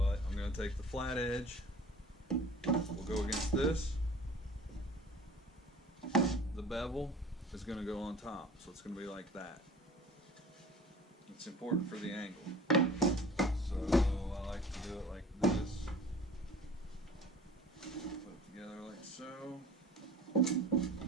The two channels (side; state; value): both; normal; correlation 0.44